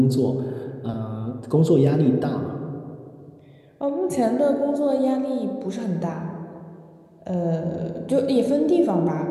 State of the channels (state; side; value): identical; both; correlation 1.00